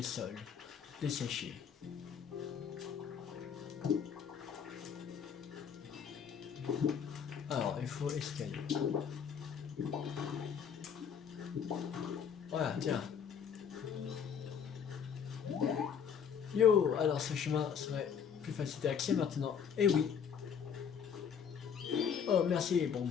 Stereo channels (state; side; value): quieter; right; 7.4 dB